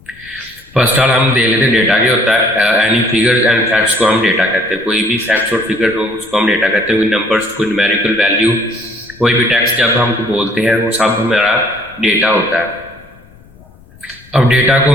फर्स्ट ऑल हम देख लेते हैं डेटा क्या होता है। एनी फिगर्स एंड फैक्ट्स को हम डेटा कहते हैं। कोई भी फैक्ट्स और फिगर हो उसको हम डेटा कहते हैं। कोई नंबर्स, कोई न्यूमेरिकल वैल्यू, कोई भी टेक्स्ट जब हम बोलते हैं वो सब हमारा डेटा होता है। अब डेटा को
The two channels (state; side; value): noise; left; rumble, 25 dB below the sound